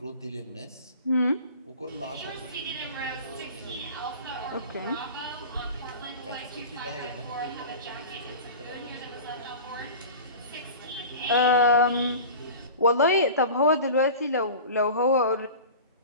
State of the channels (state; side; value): inverted; both; correlation -0.36